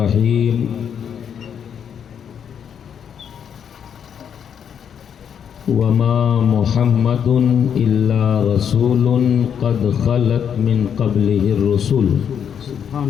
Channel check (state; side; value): quieter; right; 8.1 dB